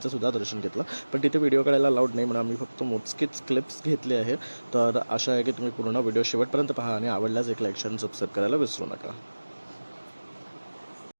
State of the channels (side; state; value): both; inverted; correlation -1.00